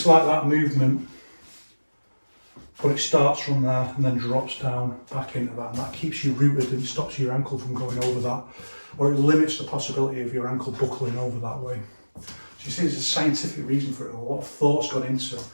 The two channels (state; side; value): inverted; both; correlation -1.00